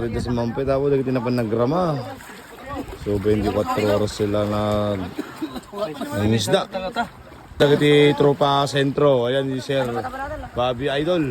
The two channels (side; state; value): both; identical; correlation 1.00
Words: sa Mampet po, hindi na pa nagrama. So 24 oras sila ng isda. Dagiti tropa sentro. Ayan si Sir Bobby